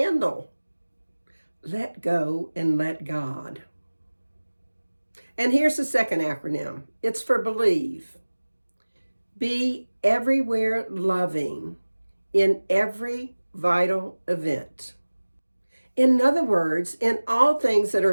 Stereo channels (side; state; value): both; inverted; correlation -1.00